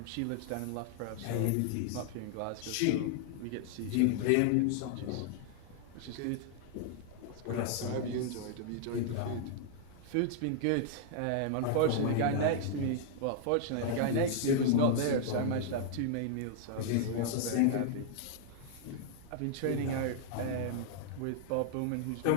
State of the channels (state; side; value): different; both; correlation -0.01